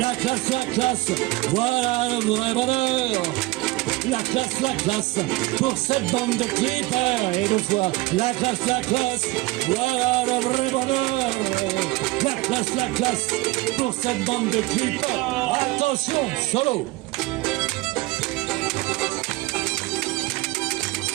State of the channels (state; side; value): quieter; left; 20.9 dB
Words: classe, voilà le vrai bonheur. La classe, pour cette bande de clippers. Et deux fois, la classe, voilà le vrai bonheur. La classe, pour cette bande de clippers. Attention, solo.